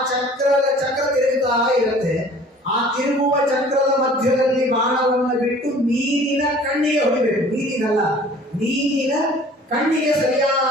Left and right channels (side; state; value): both; normal; correlation 0.49